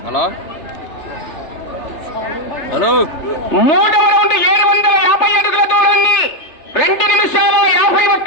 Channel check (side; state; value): right; late; 3.3 ms